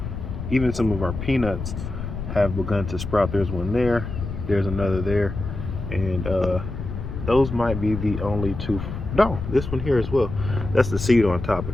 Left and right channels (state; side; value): noise; left; rumble, 7 dB below the sound